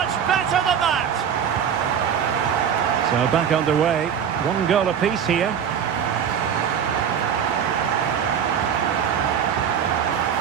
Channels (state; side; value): quieter; left; 8.2 dB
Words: better than that. So back underway. One goal apiece here.